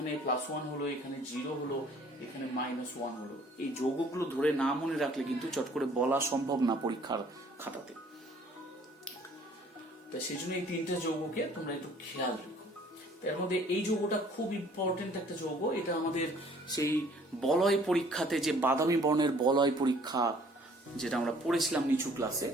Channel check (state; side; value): normal; both; correlation 0.57